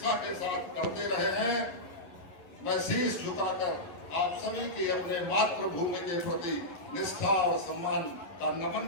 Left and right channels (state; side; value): late; right; 11 ms